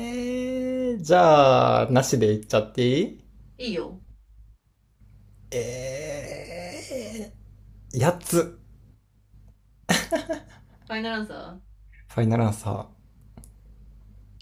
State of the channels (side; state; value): both; identical; correlation 1.00